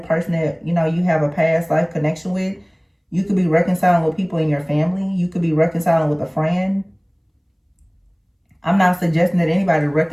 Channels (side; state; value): both; identical; correlation 1.00